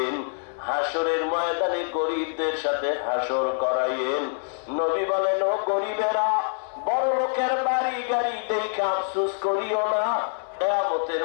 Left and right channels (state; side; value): silent; right; 61 dB below the other